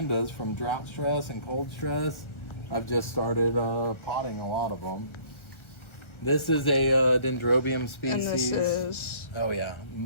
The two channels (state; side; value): late; right; 1.4 ms